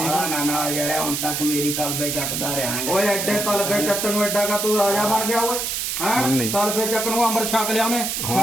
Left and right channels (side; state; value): right; noise; hiss, 2 dB below the sound